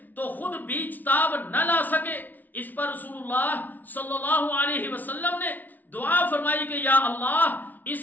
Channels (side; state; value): right; late; 0.081 ms